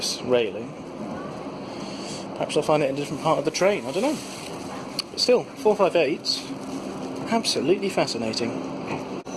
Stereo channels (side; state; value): both; identical; correlation 1.00